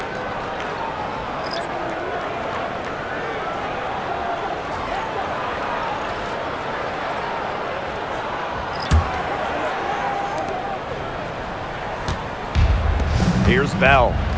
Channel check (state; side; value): identical; both; correlation 1.00